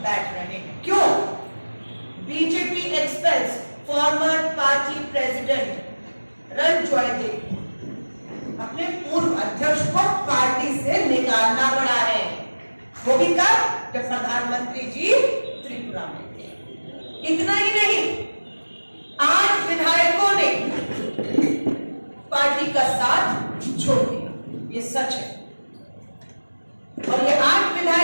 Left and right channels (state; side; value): inverted; both; correlation -1.00